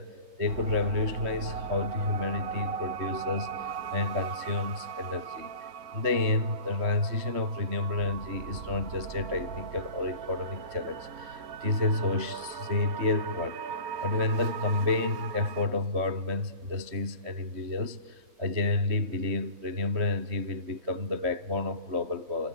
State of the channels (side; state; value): left; late; 3.2 ms